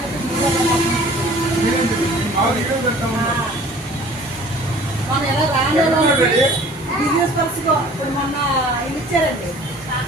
మన ఎలా రాను బిజినెస్ పర్సన్ ఇప్పుడు మొన్న ఇది ఇచ్చారండి.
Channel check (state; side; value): normal; both; correlation 0.49